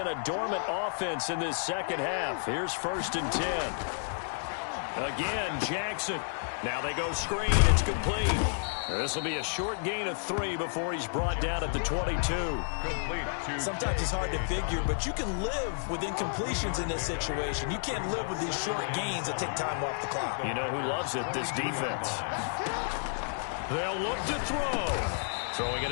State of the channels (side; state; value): right; silent; digital silence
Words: a dormant offense in this second half. Here's 1st and 10. Again, Jackson. Now they go screen. It's complete. This will be a short gain of 3 before he's brought down at the 22. Sometimes it's hard to figure, but you can live with incompletions in this situation. You can't live with these short gains that take time off the clock. You know who loves it? This defense. They'll look to throw. Throwing